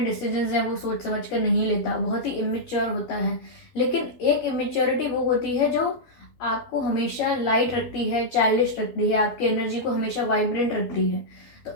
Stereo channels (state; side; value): late; right; 12 ms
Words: डिसीजंस हैं वो सोच समझ कर नहीं लेता, बहुत ही इमेच्योर होता है। लेकिन एक इमेच्योरिटी वो होती है जो आपको हमेशा लाइट रखती है, चाइल्डिश रखती है, आपकी एनर्जी को हमेशा वाइब्रेंट रखती है। तो